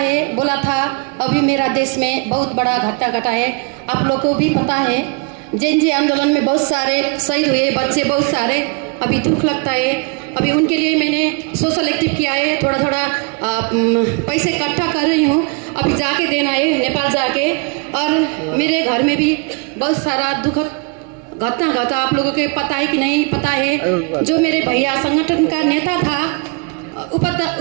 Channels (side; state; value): left; quieter; 32.7 dB